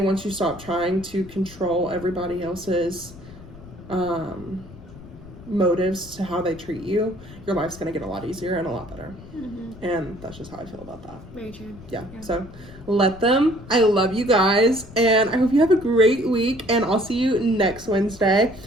you stop trying to control everybody else's motives to how they treat you, your life's going to get a lot easier and a lot better. Mm-hmm. And that's just how I feel about that. Very true. Yeah. So let them. I love you guys, and I hope you have a great week, and I'll see you next Wednesday.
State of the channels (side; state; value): left; noise; rumble, 18 dB below the sound